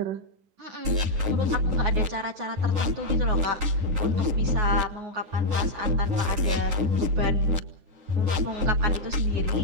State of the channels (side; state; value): left; late; 10 ms